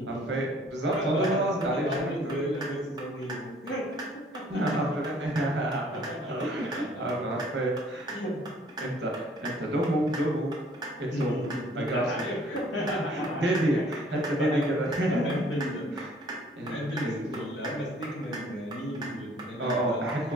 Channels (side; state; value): both; normal; correlation 0.58